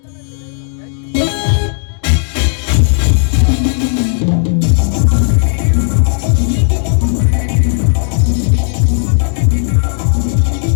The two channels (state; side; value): silent; right; digital silence